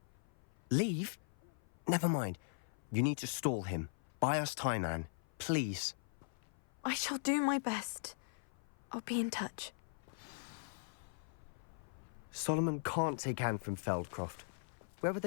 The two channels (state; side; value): silent; right; 51 dB below the other